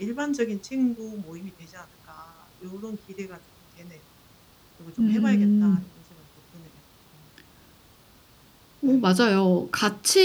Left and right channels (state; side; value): identical; both; correlation 1.00